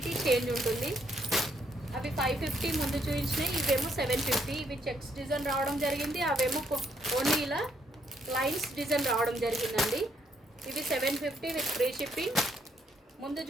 చేంజ్ ఉంటుంది. అవి 550 ముందు చూపించినాయి, ఇవేమో 750. ఇవి చెక్స్ డిజైన్ రావడం జరిగింది, అవేమో ఓన్లీ ఇలా లైన్స్ డిజైన్ రావడం జరిగిందండి. ఇవి 750 విత్ ఫ్రీ షిప్పింగ్. ముందు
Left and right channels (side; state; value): both; normal; correlation 0.71